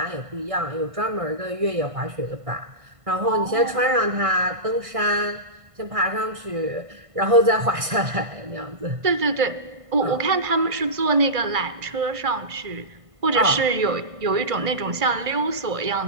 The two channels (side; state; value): left; late; 1.5 ms